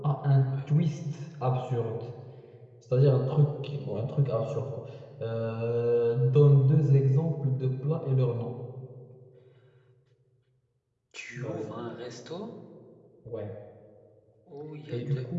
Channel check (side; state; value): both; identical; correlation 1.00